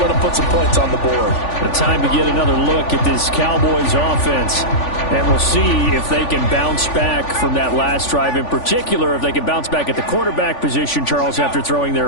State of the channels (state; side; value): late; right; 3.5 ms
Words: them put some points on the board. The time to get another look at this Cowboys offense. And we'll see if they can bounce back from that last drive. In particular, if they can bounce back at the quarterback position, Charles, after throwing